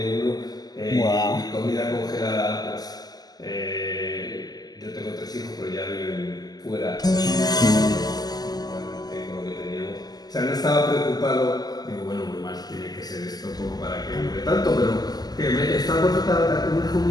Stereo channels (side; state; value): right; late; 0.19 ms